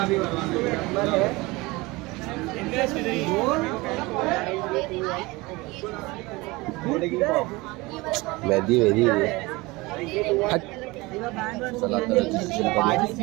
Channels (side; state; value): left; quieter; 22.8 dB